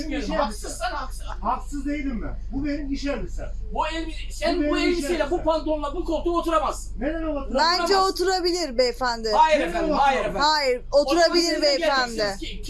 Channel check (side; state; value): both; identical; correlation 1.00